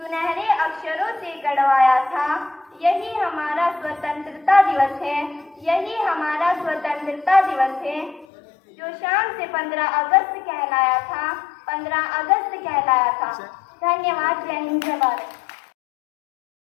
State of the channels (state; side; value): drops out; right; at 8.2 s